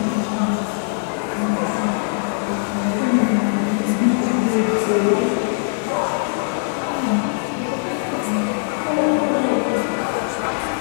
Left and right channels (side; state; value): right; silent; digital silence